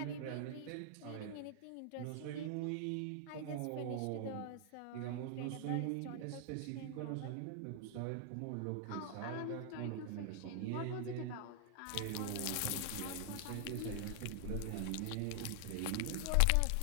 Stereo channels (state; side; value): different; both; correlation 0.00